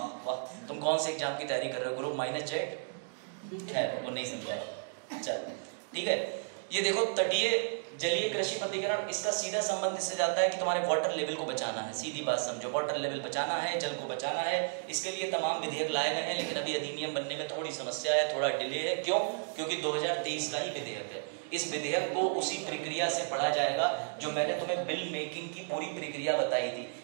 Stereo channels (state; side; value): silent; left; digital silence